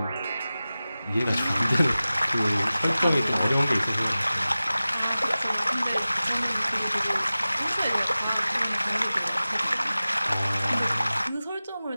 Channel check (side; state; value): both; inverted; correlation -0.96